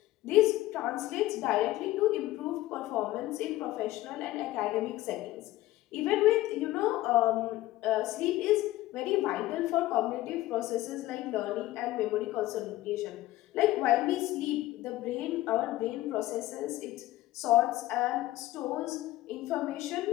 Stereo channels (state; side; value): quieter; right; 16.3 dB